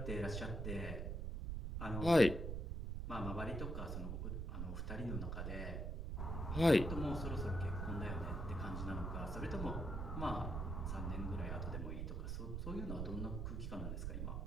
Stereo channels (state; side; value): noise; right; rumble, 2 dB below the sound